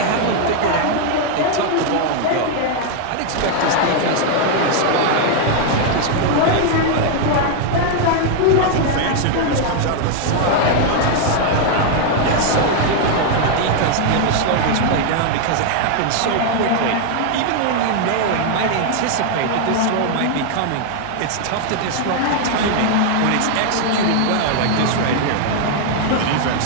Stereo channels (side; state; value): both; different; correlation 0.00